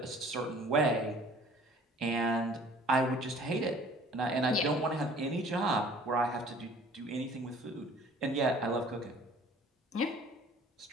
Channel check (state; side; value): normal; both; correlation 0.51